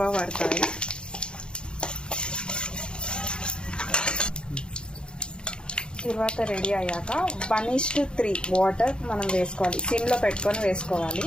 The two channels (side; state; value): right; late; 0.052 ms